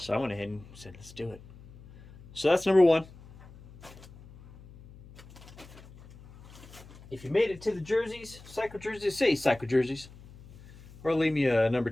I went ahead and said, let's do it. So that's number 1. If you made it to the jerseys, cycle jerseys, say cycle jerseys. Or leave me a number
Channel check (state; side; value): noise; left; hum, 20 dB below the sound